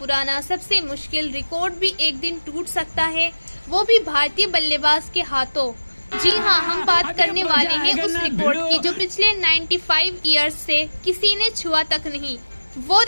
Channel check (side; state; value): both; inverted; correlation -1.00